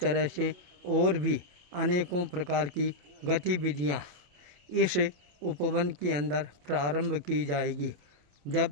से और भी अनेकों प्रकार की गतिविधियां इस उपवन के अंदर प्रारंभ की जाएगी।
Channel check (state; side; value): late; left; 28 ms